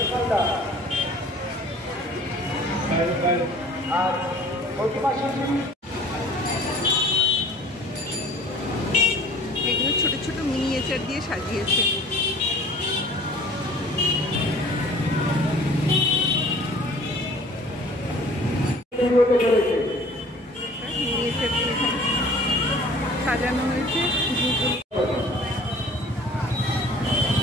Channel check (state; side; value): normal; both; correlation 0.49